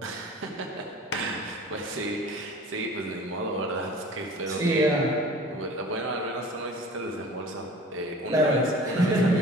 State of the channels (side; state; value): both; normal; correlation 0.43